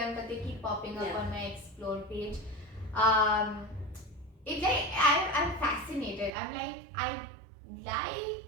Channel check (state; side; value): drops out; left; at 6.3 s